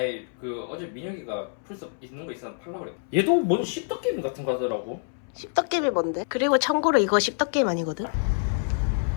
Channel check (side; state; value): right; silent; 61 dB below the other